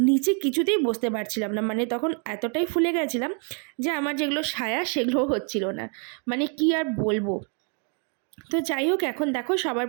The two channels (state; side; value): quieter; left; 39.9 dB